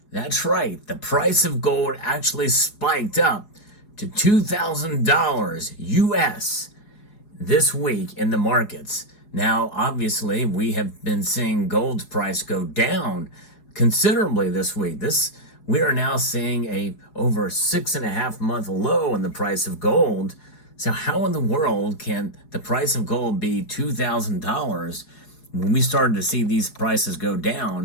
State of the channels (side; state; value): right; late; 4.8 ms